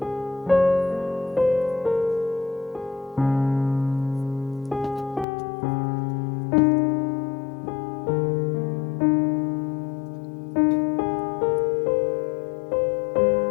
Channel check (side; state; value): right; drops out; at 5.2 s